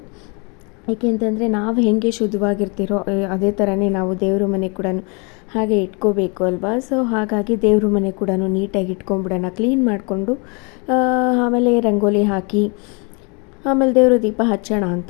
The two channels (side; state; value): right; quieter; 32.8 dB